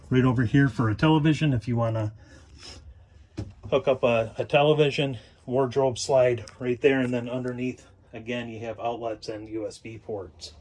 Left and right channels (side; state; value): both; identical; correlation 1.00